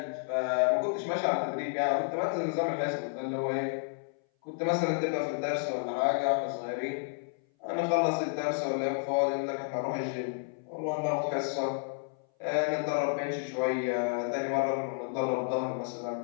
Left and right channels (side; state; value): right; silent; 57 dB below the other